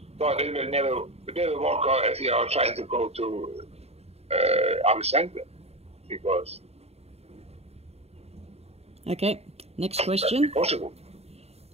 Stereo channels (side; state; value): left; late; 0.30 ms